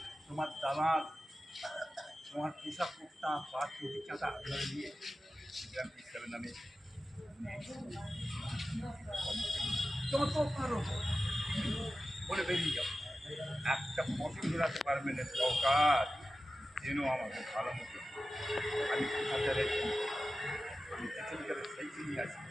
তোমার দালাল, তোমার পোশাক কুর্তা বা চটি চাঁদা ধরে নিয়ে সিস্টেমের নামে যত পারো বলে বেরিয়ে যাও। একটা পছন্দ রাখতে পারবে না সরকার, যেন আমাকে ভালো মতো আমি কোথাতে রেখি, আমি যেখানকার সেইখানেই আছি,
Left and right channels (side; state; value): both; normal; correlation 0.94